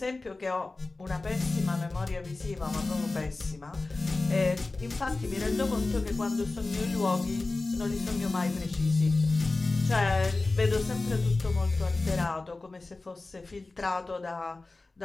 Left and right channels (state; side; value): quieter; right; 3.3 dB